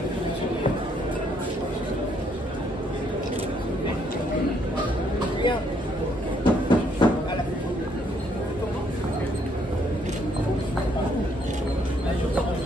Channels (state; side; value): normal; both; correlation 0.69